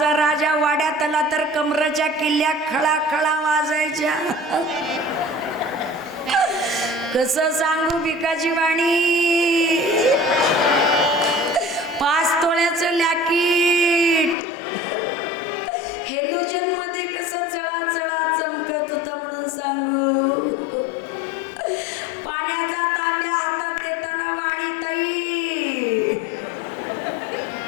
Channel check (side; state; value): right; drops out; at 14.4 s